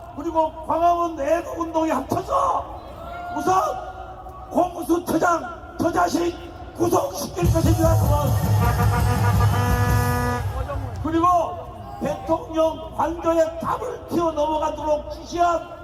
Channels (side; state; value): both; identical; correlation 1.00